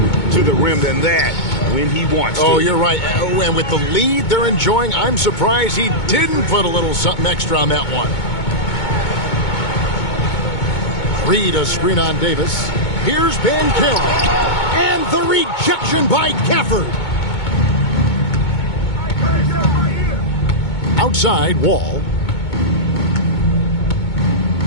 to the rim than that when he wants to. Oh, you're right. And with the lead they're enjoying, I'm surprised he didn't put a little something extra on that one. Reed a screen on Davis. Here's Banchero. And the rejection by Gafford. Outside, Wall.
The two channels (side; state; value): right; late; 2.2 ms